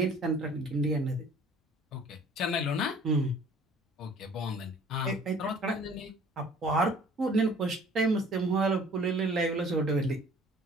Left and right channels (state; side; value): normal; both; correlation 0.52